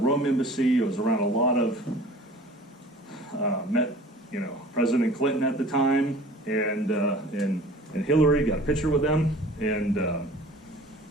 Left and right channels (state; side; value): normal; both; correlation 0.45